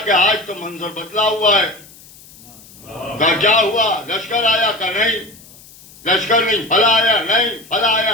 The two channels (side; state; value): left; noise; hiss, 23 dB below the sound